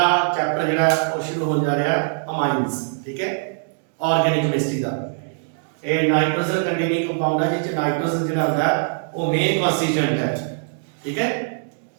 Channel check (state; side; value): silent; left; digital silence